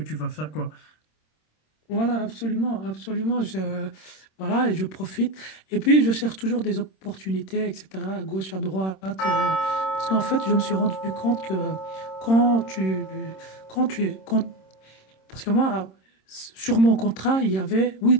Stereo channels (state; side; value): late; right; 26 ms